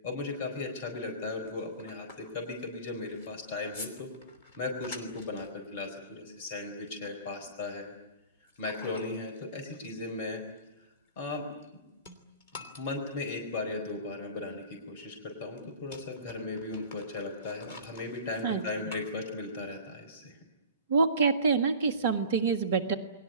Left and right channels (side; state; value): both; inverted; correlation -0.41